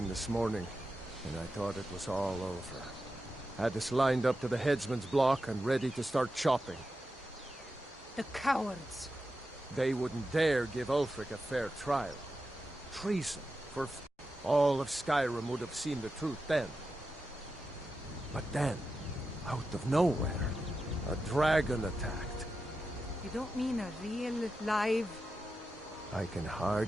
this morning, and I thought it was all over. Had us lined up to the headsman's block and ready to start chopping. The cowards! They wouldn't dare give Ulfric a fair trial. Treason for all of Skyrim would have seen the truth then. But then, out of nowhere, a dragon attacked. You don't mean a real, live... I can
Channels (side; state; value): both; normal; correlation 0.90